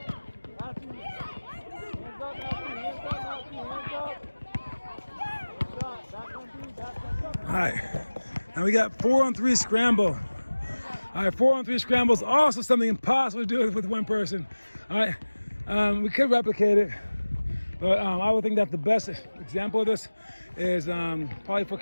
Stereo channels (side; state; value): both; inverted; correlation -1.00